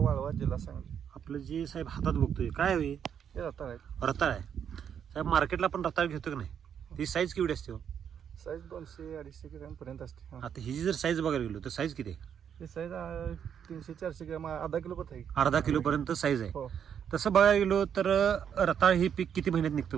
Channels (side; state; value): left; quieter; 8.3 dB